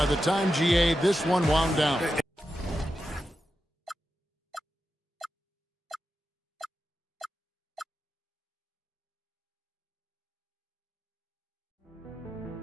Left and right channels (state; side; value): normal; both; correlation 0.90